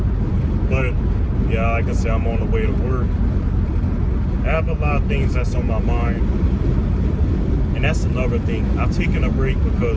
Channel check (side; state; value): both; identical; correlation 1.00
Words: But yeah, like I said, I'm on the way to work. I have a lot of things that's on my mind. And that's another thing. I've taken a break